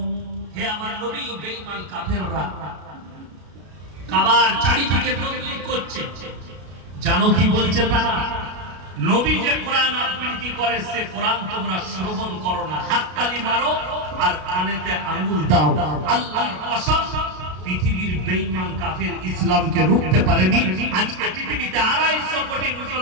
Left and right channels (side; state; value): left; late; 33 ms